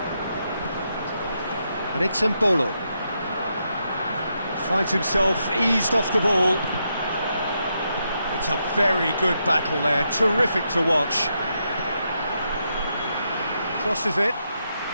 And it's Embolo. Finds himself eased off the ball. It's a very good battle there, terrific to watch. Crosses it.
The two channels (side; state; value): both; inverted; correlation -0.82